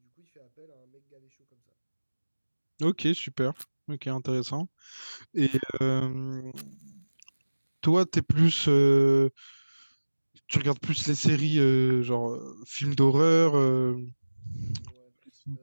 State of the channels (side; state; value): both; inverted; correlation -1.00